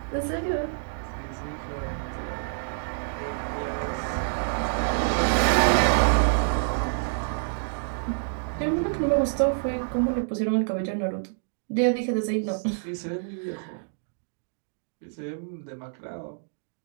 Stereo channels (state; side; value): silent; left; digital silence